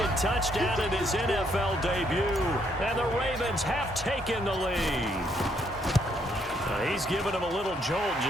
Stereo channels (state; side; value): normal; both; correlation 0.71